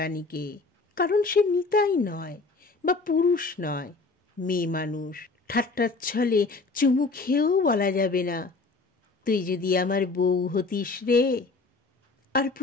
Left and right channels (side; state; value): right; quieter; 3.8 dB